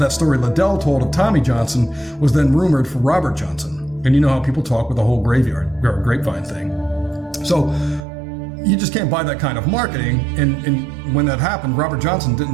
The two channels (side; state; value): left; drops out; at 8.1 s